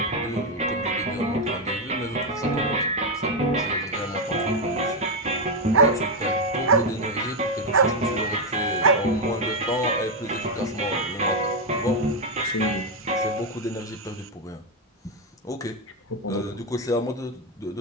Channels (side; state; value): both; normal; correlation 0.04